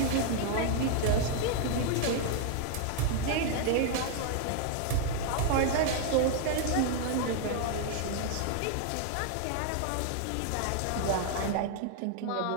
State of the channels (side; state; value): both; different; correlation 0.00